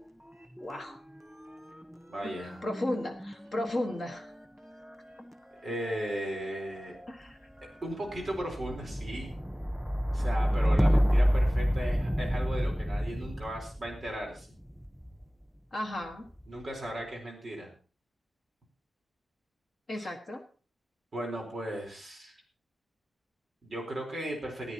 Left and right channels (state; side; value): normal; both; correlation 0.96